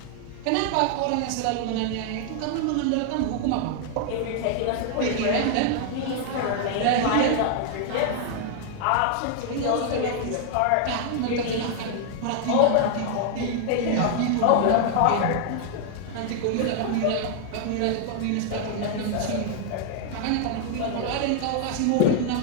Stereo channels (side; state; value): both; different; correlation 0.00